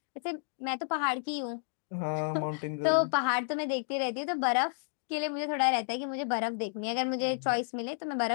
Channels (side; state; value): right; silent; digital silence